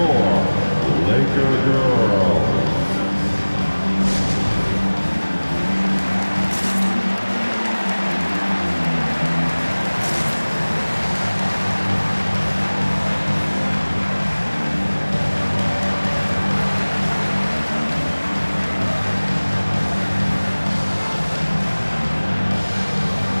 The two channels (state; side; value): inverted; both; correlation -1.00